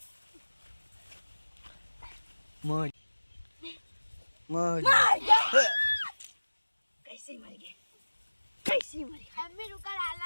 मौज मौज कैसे मर गए? कैसे मर गए? मम्मी रुका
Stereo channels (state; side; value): inverted; both; correlation -1.00